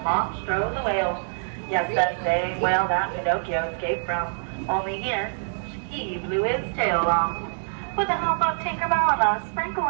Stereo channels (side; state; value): left; silent; digital silence